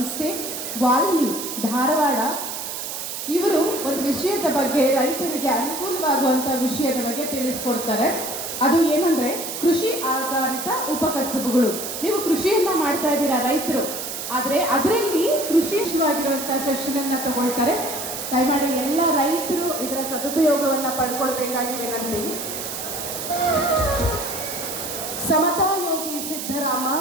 ವಾಲ್ಮಿ, ಧಾರವಾಡ. ಇವರು ಒಂದು ವಿಷಯದ ಬಗ್ಗೆ, ರೈತರಿಗೆ ಅನುಕೂಲವಾಗುವಂಥ ವಿಷಯದ ಬಗ್ಗೆ ತಿಳಿಸ್ಕೊಡ್ತಾರೆ. ಅದು ಏನಂದರೆ ಕೃಷಿ ಆಧಾರಿತ ಉಪಕಸಬುಗಳು. ನೀವು ಕೃಷಿಯನ್ನು ಮಾಡ್ತಾ ಇದ್ದೀರಾ ರೈತರು, ಆದರೆ ಅದರಲ್ಲಿ ಕೃಷಿವಾಗಿರುವಂಥ ಸೆಷನನ್ನು ತಗೊಳ್ತಾರೆ. ದಯಮಾಡಿ ಎಲ್ಲ ರೈತರು ಇದರ ಸದುಪಯೋಗವನ್ನು ಪಡ್ಕೊಳ್ಬೇಕಾಗಿ ವಿನಂತಿ. ಸಮತಾ ಯೋಗಿ ಸಿದ್ದರಾಮ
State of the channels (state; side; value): noise; right; hiss, 6 dB below the sound